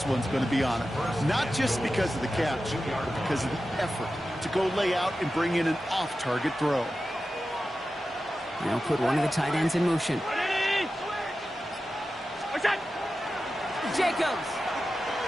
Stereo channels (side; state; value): both; normal; correlation 0.93